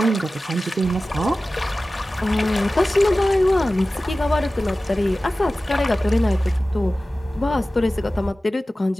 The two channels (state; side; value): normal; both; correlation 0.96